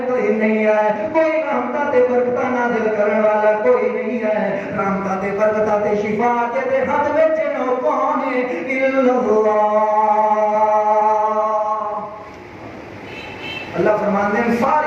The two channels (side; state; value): both; identical; correlation 1.00